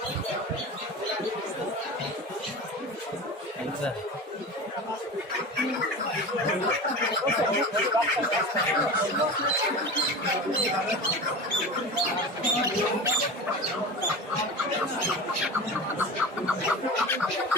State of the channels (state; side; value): normal; both; correlation 0.30